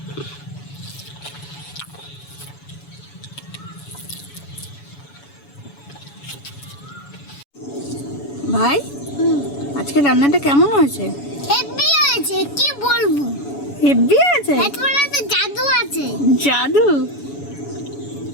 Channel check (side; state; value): right; late; 7.1 ms